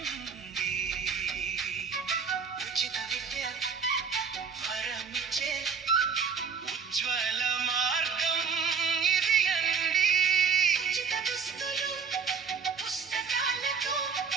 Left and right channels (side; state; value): left; quieter; 6.0 dB